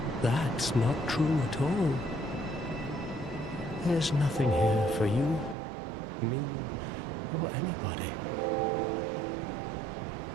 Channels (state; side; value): drops out; left; at 5.6 s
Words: that's not true at all. There's nothing here for you, me, or anybody.